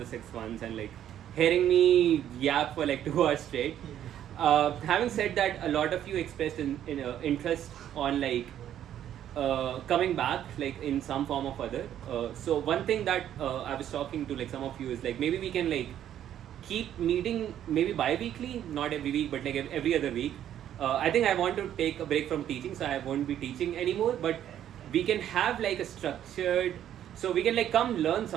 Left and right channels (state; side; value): quieter; left; 10.8 dB